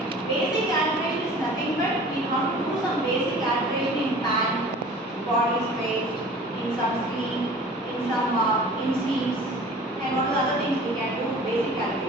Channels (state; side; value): normal; both; correlation 0.44